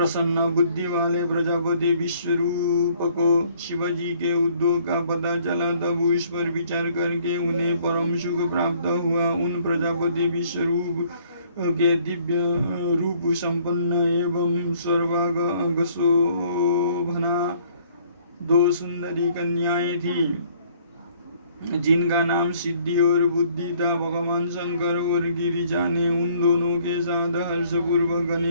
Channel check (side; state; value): both; inverted; correlation -0.61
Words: बुद्धि वाले प्रजापति विश्वरूप को शिवजी के उद्योग का पता चला, तब उस पर विचार करके उन्हें परम सुख प्राप्त हुआ। उन प्रजापति विश्वरूप के दिव्य रूप संपन्न एवं सर्वांग शोभना दो सुंदरी कन्याएं थी, जिनका नाम सिद्धि और बुद्धि था। भगवान शंकर और गिरिजा ने उन दोनों के साथ हर्षपूर्वक